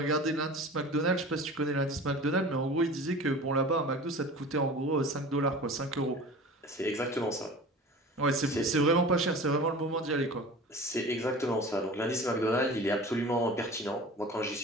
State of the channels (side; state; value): both; normal; correlation 0.38